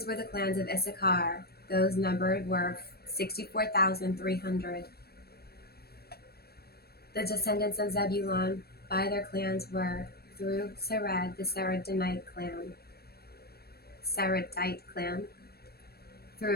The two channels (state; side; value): late; right; 0.46 ms